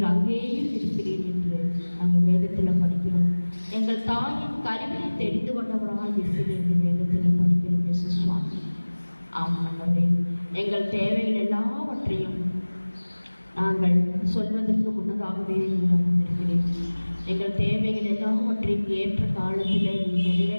அங்கேயும் இருக்கிறீர் என்று நாங்கள் வேதத்தில் படிக்கிறோம். எங்கள் தாயின் கருவியை தெரிந்து கொண்டவராக இருக்கிறேன் என்று வேதத்தில் படிக்கிறோம். இயேசு சுவாமி ஆமாண்டவரே, எங்கள் தேவைகள் எல்லாவற்றையும் நாங்கள் சொல்வதற்கு முன்னதாகவே நீங்கள் அறிந்திருக்கிறேன். எங்கள் தேவைகள் எல்லாவற்றையும் ஏற்ற காலத்தில் நீங்கள்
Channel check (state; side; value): inverted; both; correlation -1.00